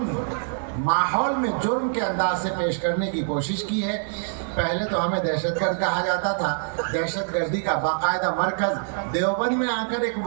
ماحول میں جرم کے انداز سے پیش کرنے کی کوشش کی ہے۔ پہلے تو ہمیں دہشت گرد کہا جاتا تھا، دہشت گردی کا باقاعدہ مرکز دیوبند میں آ کر ایک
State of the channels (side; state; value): left; silent; 62 dB below the other